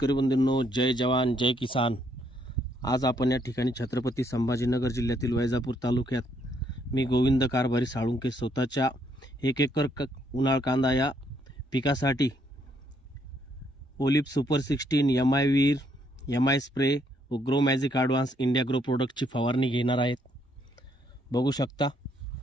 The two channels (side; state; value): both; normal; correlation 0.71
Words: बंधूंनो, जय जवान जय किसान। आज आपण या ठिकाणी छत्रपती संभाजीनगर जिल्ह्यातील वैजापूर तालुक्यात मी गोविंद कारभारी साळुंके स्वतःच्या 1 एकर उन्हाळ कांदा या पिकासाठी ओलिप सुपर 16 MI वीर MI स्प्रे व grow magic advance India grow प्रोडक्टची फवारणी घेणार आहेत। बघू शकता